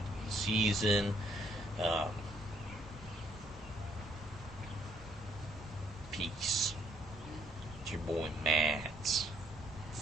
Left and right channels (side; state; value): right; noise; rumble, 19 dB below the sound